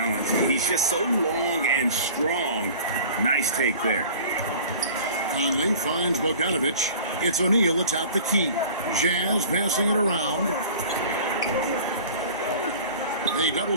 He's just so long and strong. Nice take there. Conley finds Bogdanovich. It's O'Neal atop the key. Jazz passing it around. They double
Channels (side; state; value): both; inverted; correlation -0.43